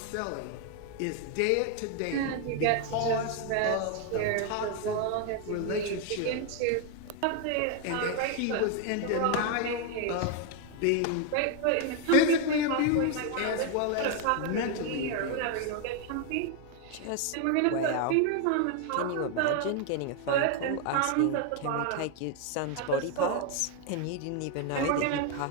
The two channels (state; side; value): different; both; correlation 0.01